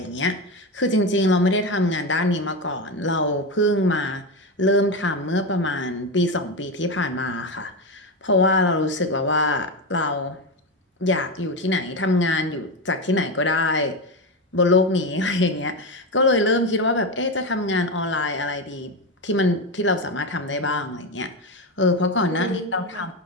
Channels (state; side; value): normal; both; correlation 0.15